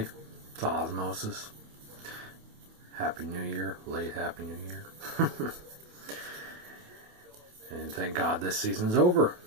It's Osmosis. Happy New Year. Late Happy New Year. And thank God this season's over.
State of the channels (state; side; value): late; left; 28 ms